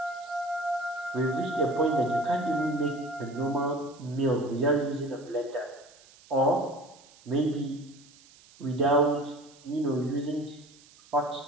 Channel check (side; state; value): right; noise; hiss, 25 dB below the sound